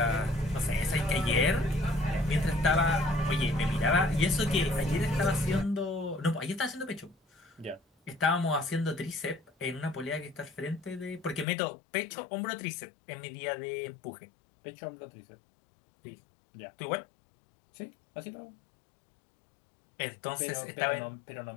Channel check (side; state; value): right; drops out; at 11.5 s